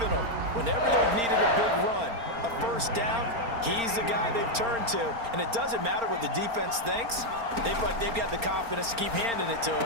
them. Whenever they've needed a big run, a first down, he's the guy they've turned to. And it doesn't matter what the defense thinks. They feel like they've got the confidence to keep handing it to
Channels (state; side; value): late; left; 4.4 ms